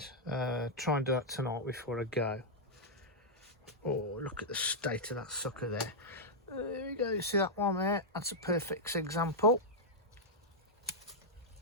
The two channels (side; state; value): both; normal; correlation -0.06